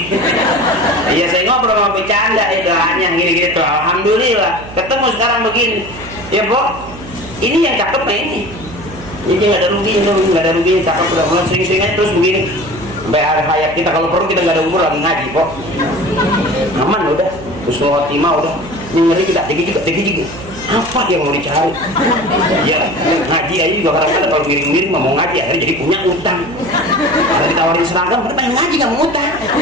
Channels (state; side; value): noise; right; hum, 15 dB below the sound